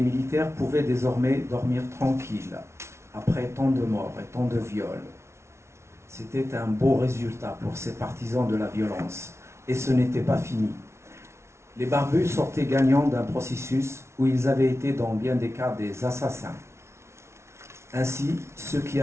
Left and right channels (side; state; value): left; late; 0.13 ms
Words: militaires pouvaient désormais dormir tranquilles après tant de morts et tant de viols. C'était un beau résultat pour ces partisans de la violence. Et ce n'était pas fini. Les barbus sortaient gagnants d'un processus où ils avaient été dans bien des cas des assassins. Ainsi, ceux qui